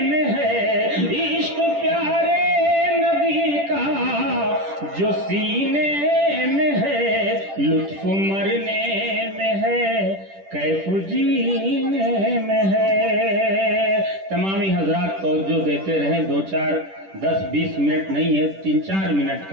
میں ہے، عشق پیارے نبی کا جو سینے میں ہے، لطف مرنے میں ہے کیف جینے میں ہے۔ تمامی حضرات توجہ دیتے رہیں، 10-20 منٹ نہیں ہے، 3-4 منٹ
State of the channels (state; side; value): late; left; 10 ms